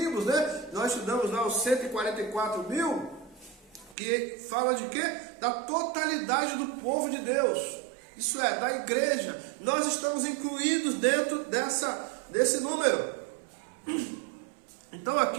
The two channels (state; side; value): drops out; left; at 4.0 s